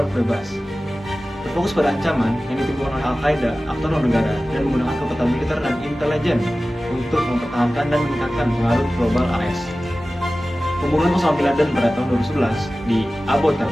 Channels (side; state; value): both; normal; correlation 0.96